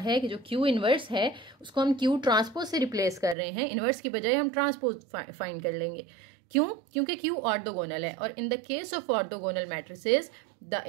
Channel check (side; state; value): left; drops out; at 3.4 s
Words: कि जो Q इन्वर्स है उसको हम Q ट्रांसपोज से रिप्लेस कर रहे हैं, इन्वर्स की बजाय हम ट्रांसपोज फाइंड कर लेंगे। क्यों? क्योंकि Q ऑर्थोगोनल है और in the case of orthogonal matrices the